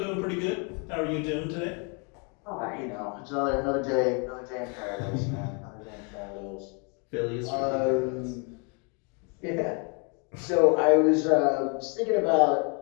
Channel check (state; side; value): quieter; right; 35.4 dB